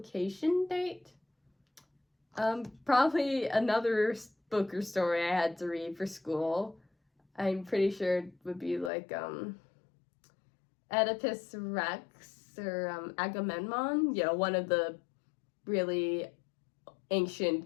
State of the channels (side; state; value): right; drops out; at 8.9 s